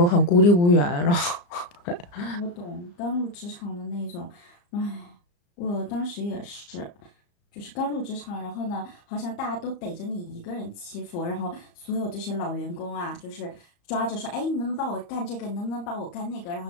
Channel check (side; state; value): right; late; 34 ms